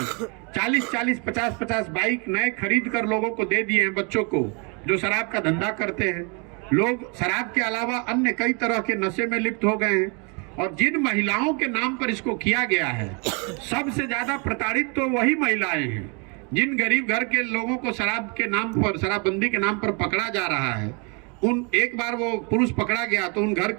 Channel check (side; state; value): left; quieter; 33.8 dB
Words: 40-40, 50-50 बाइक नए खरीद कर लोगों को दे दिए हैं, बच्चों को जो शराब का धंधा करते हैं। लोग शराब के अलावा अन्य कई तरह के नशे में लिप्त हो गए हैं। और जिन महिलाओं के नाम पर इसको किया गया है, सबसे ज्यादा प्रताड़ित तो वही महिलाएं हैं। जिन गरीब घर के लोगों को शराब के नाम पर, शराबबंदी के नाम पर पकड़ा जा रहा है, एक बार वो पुरुष पकड़ा गया तो उन घर